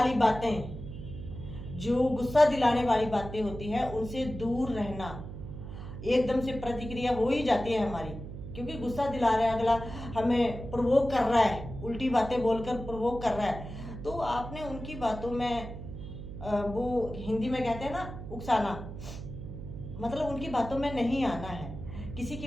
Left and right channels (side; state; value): right; noise; hum, 10 dB below the sound